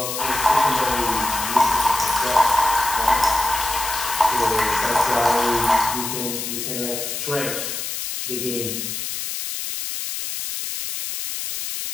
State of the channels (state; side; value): noise; left; hiss, 4 dB below the sound